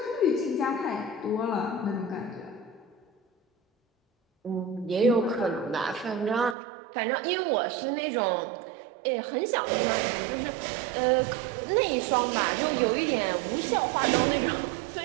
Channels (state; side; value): drops out; left; at 6.6 s